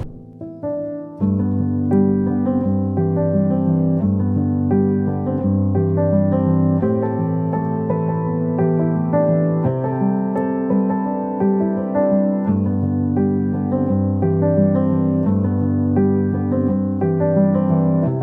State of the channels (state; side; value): identical; both; correlation 1.00